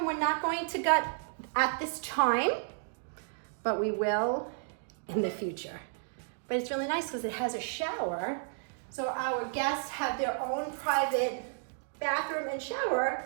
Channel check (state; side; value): silent; left; digital silence